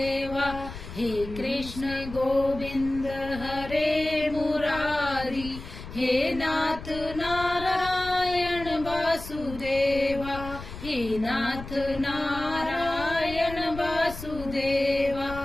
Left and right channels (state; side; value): noise; left; rumble, 12 dB below the sound